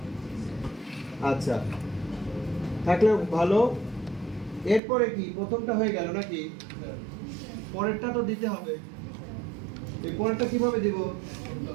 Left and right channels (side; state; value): left; drops out; at 4.8 s